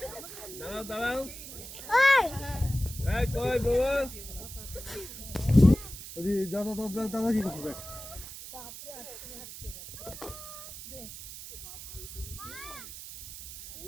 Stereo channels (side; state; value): right; noise; hiss, 11 dB below the sound